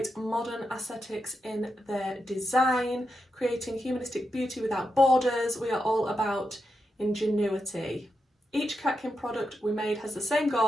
modern aesthetics in their design, creating humanistic beauty without borders. We are all about ingenuity. Each Catkin product we made has the same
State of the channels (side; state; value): both; normal; correlation 0.86